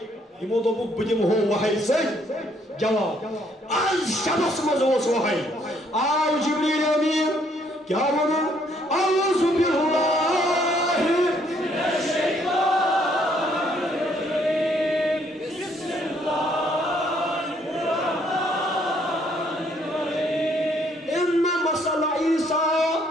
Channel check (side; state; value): both; normal; correlation 0.67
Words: یمو دوپک بہ دمہو وحی سۭتۍ جواب آز شبس مز اوس وحی آو جبریل امین کیا ون اعوذ باللہ